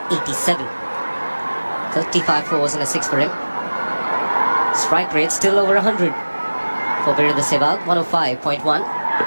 35 fours and a 6 for him. Strike rate still over 100 for Virendra Sehwag, 105.1.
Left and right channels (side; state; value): both; inverted; correlation -1.00